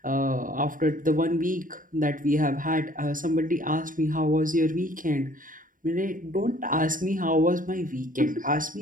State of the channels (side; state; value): left; late; 0.39 ms